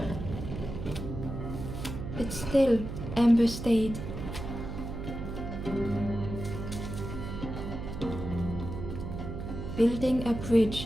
But still, Ember stayed. Building a bridge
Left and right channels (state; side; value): noise; right; hum, 7 dB below the sound